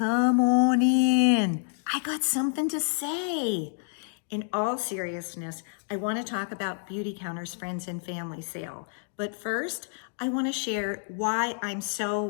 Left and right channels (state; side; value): silent; right; 59 dB below the other